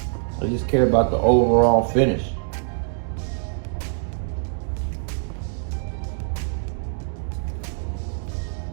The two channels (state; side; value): silent; left; digital silence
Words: They just care about the overall finish.